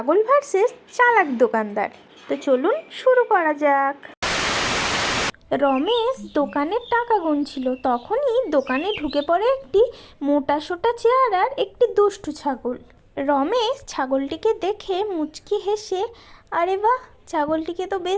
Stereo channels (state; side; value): identical; both; correlation 1.00